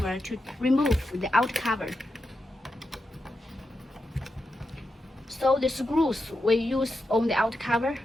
to remove the out cover. So the screws we use on the out cover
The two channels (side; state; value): both; normal; correlation 0.87